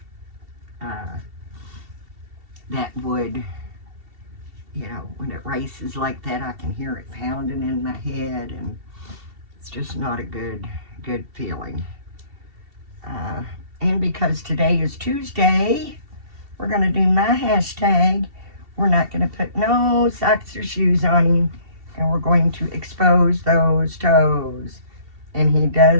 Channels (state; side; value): late; left; 2.7 ms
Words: That would, when it races like that, I can hear it pounding in my head, and it's just not a good feeling. And because today is Tuesday, we're going to do my hashtag. We're not going to put no socks or shoes on him, and we're going to expose those toes. And he